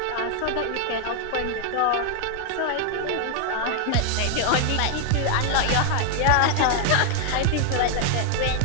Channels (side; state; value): both; different; correlation 0.00